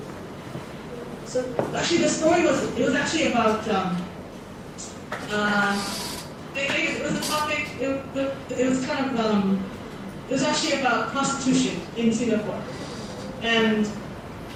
So actually, the story was actually about it was a topic. It was kind of it was actually about prostitution in Singapore, and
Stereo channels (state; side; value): identical; both; correlation 1.00